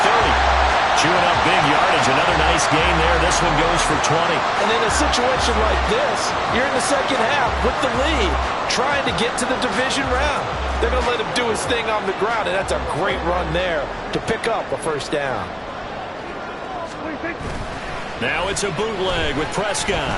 Chewing up big yardage. Another nice gain there. This one goes for 20. And in a situation like this, you're in the second half with the lead, trying to get to the division round. They're going to let him do his thing on the ground, and that's a great run there to pick up a first down. Now it's a bootleg with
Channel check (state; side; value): identical; both; correlation 1.00